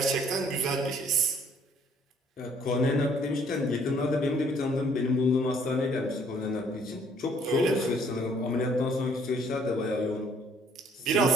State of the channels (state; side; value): normal; both; correlation 0.61